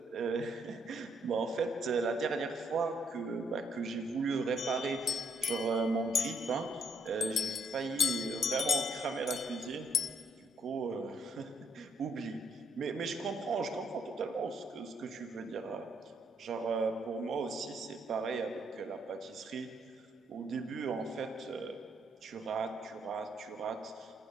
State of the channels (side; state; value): both; normal; correlation 0.72